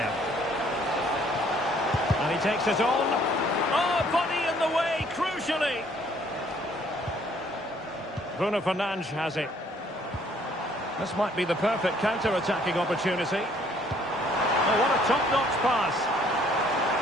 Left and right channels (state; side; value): normal; both; correlation 0.62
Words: And he takes it on. Oh, body in the way, crucially. Bruno Fernandes has it. This might be the perfect counter-attacking opportunity. Oh, what a top-notch pass.